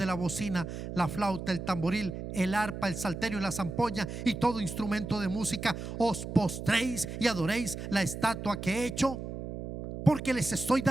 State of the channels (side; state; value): right; noise; hum, 7 dB below the sound